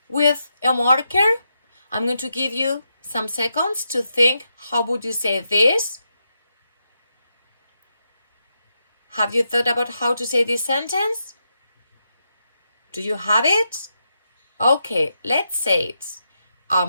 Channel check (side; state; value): both; inverted; correlation -0.84